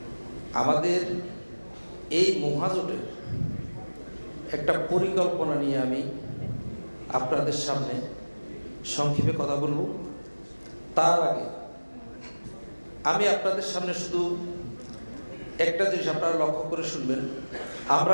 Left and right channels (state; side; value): inverted; both; correlation -1.00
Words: আমাদের এই মহাজোটের একটা পরিকল্পনা নিয়ে আমি আপনাদের সামনে সংক্ষেপে কথা বলব। তার আগে আমি আপনাদের সামনে শুধু একটা জিনিস আপনারা লক্ষ্য করে শুনবেন,